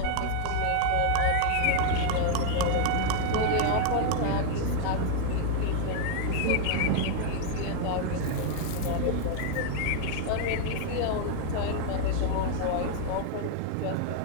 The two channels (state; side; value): different; both; correlation 0.00